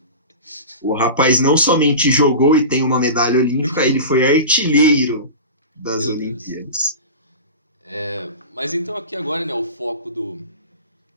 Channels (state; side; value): inverted; both; correlation -0.30